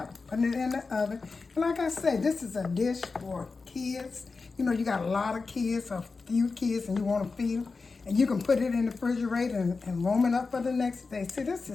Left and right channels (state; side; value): quieter; right; 4.3 dB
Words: putting it in the oven. And like I said, this is a dish for kids. You know, you got a lot of kids or few kids and you want to feed them. And you can put it in the refrigerator and warm it up for the next day. See, this